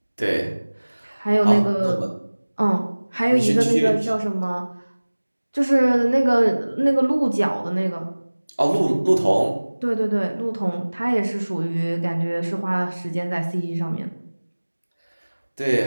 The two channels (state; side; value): inverted; both; correlation -1.00